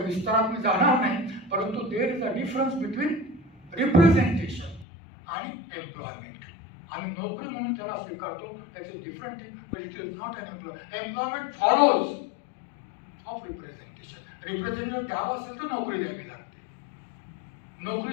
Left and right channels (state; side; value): drops out; right; at 4.9 s